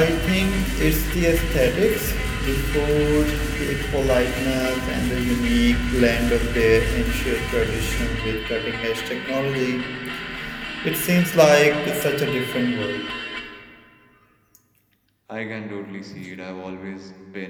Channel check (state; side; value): identical; both; correlation 1.00